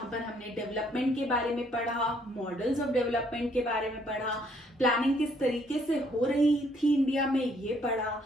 पर हमने डेवलपमेंट के बारे में पढ़ा, मॉडल्स ऑफ डेवलपमेंट के बारे में पढ़ा, प्लानिंग किस तरीके से हो रही थी इंडिया में ये पढ़ा,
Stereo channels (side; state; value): both; normal; correlation 0.66